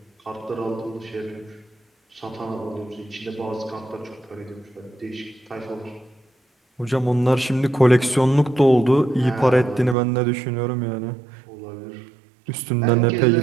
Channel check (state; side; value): drops out; left; at 10.0 s